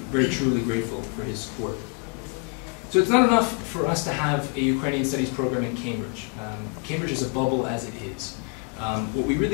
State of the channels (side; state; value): right; quieter; 36.9 dB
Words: very truly grateful for his support. So it's not enough for us to have a Ukrainian studies program in Cambridge. Cambridge is a bubble as it is. What we